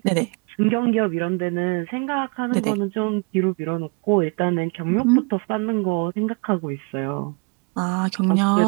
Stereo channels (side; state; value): left; quieter; 32.1 dB